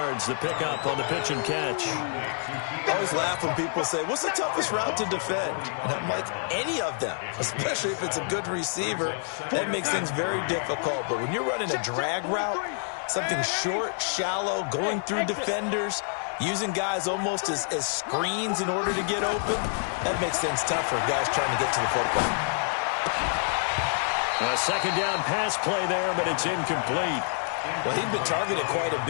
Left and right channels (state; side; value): silent; right; 60 dB below the other